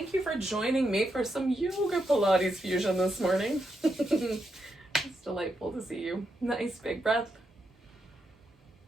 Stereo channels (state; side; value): normal; both; correlation 0.83